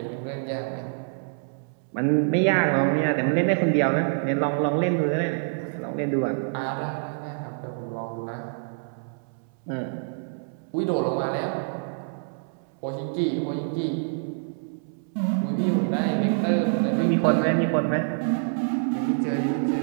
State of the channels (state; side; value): silent; left; 61 dB below the other